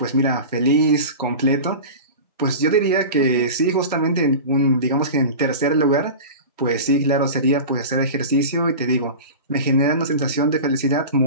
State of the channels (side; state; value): both; inverted; correlation -0.31